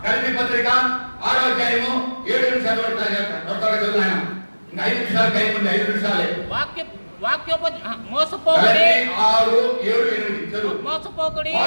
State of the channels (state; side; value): inverted; both; correlation -1.00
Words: పత్రిక 6వ అధ్యాయము 7 నిమిషాలు చదువుతాను. ఇంకా 5 నిమిషాలు టైం ఉంది, 5 నిమిషాలే. మోసపోకుడి 6, 7, 8 చదువు. మోసపోకుడి